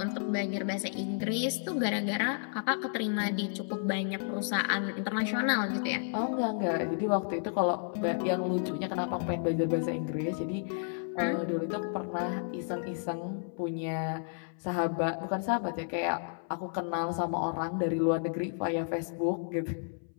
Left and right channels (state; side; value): silent; right; 57 dB below the other